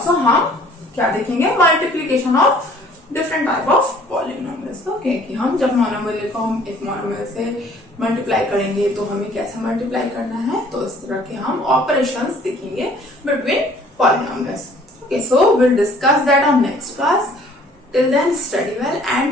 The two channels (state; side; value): normal; both; correlation 0.55